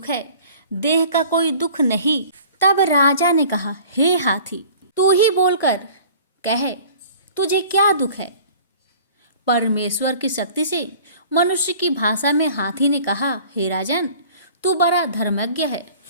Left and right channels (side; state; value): both; inverted; correlation -0.47